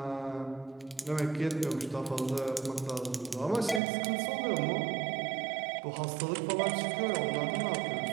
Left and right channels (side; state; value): left; drops out; at 3.8 s